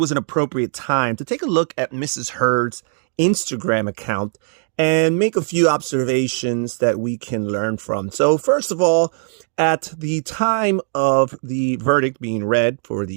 an appropriate time to take a look at Mrs. Heard's Instagram account and make a few observations that we can learn from. So first of all, at the time of the verdict being read for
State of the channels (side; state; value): left; silent; digital silence